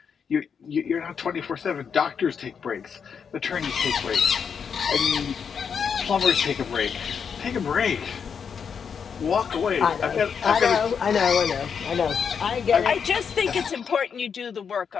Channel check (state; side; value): quieter; right; 6.7 dB